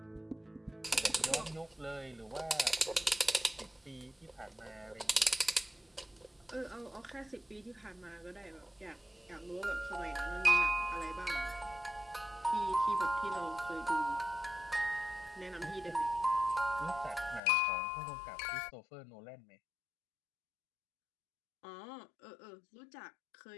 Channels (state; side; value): drops out; right; at 17.4 s